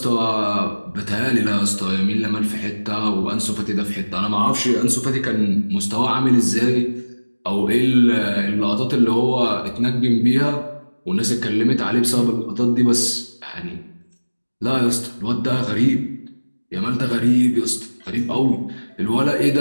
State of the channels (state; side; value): inverted; both; correlation -1.00